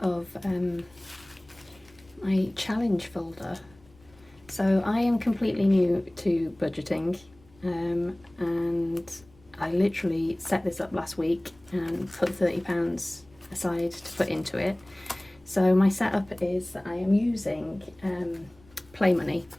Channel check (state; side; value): noise; left; rumble, 28 dB below the sound